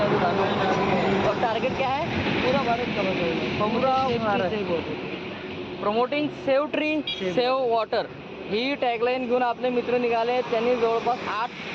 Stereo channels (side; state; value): both; identical; correlation 1.00